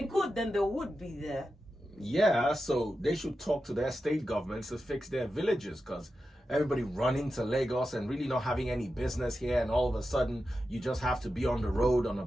could, then they would be there. Yeah, so they should talk to their state governments to fix their villages, because everybody running to Lagos and really not having any business here, and all of a sudden you just have to be on the road on a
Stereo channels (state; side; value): normal; both; correlation 0.91